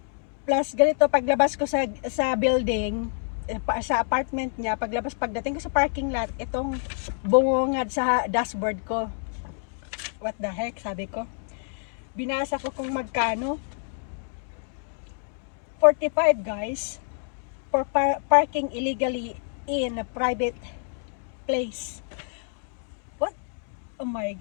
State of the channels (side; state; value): right; silent; 60 dB below the other